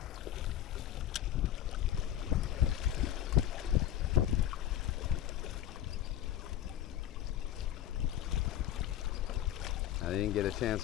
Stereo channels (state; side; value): quieter; right; 11.6 dB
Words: I didn't get a chance